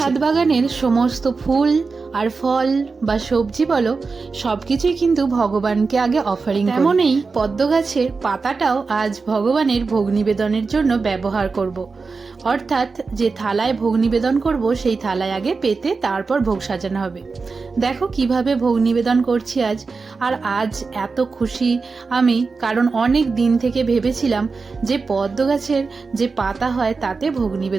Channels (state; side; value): quieter; left; 4.4 dB